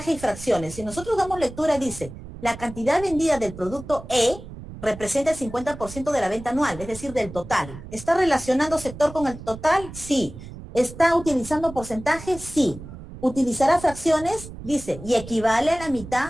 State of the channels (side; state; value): right; noise; rumble, 14 dB below the sound